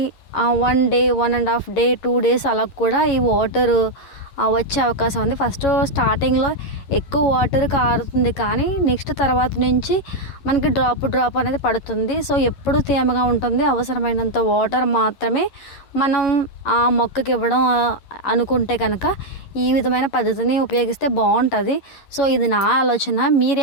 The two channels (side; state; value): right; late; 11 ms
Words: 1 డే, 1.5 డే, 2 డేస్ అలా కూడా ఈ వాటర్ వచ్చే అవకాశం ఉంది. ఫస్ట్ స్టార్టింగ్లో ఎక్కువ వాటర్ కారుతుంది, కానీ నెక్స్ట్ తర్వాత నుంచి మనకి డ్రాప్ అనేది పడుతుంది. సో ఎప్పుడు తేమగా ఉంటుంది. అవసరమైనంత వాటర్ మాత్రమే మనం ఆ మొక్కకి ఇవ్వడం అనుకుంటే కనుక ఈ విధమైన పద్ధతిని ఉపయోగిస్తే బాగుంటుంది. సో ఇది నా ఆలోచన.